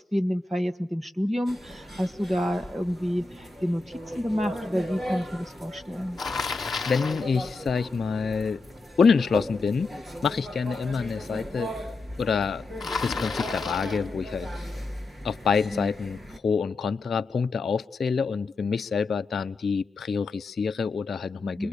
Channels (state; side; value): quieter; right; 3.7 dB